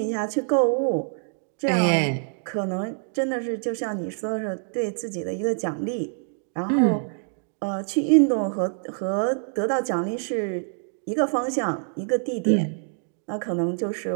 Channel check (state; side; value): silent; left; 61 dB below the other